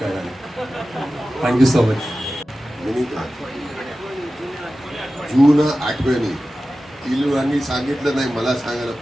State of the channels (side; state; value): both; normal; correlation 0.94